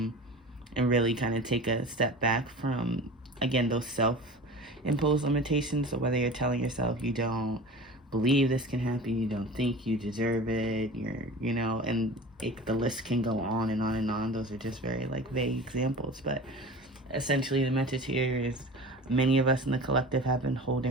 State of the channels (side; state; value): both; normal; correlation 0.36